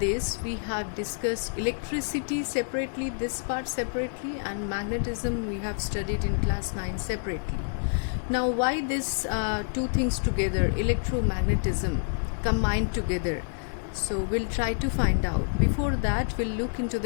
we have discussed electricity separately, this part separately, and magnetism we have studied in class 9 separately. Now why this two things together, electromagnetism combined together? So we'll try to find out. Before that we'll look into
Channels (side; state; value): right; silent; digital silence